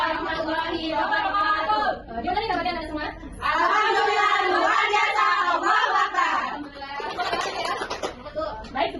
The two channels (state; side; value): identical; both; correlation 1.00